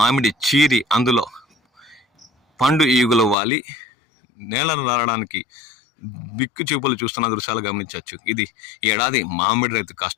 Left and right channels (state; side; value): drops out; right; at 3.4 s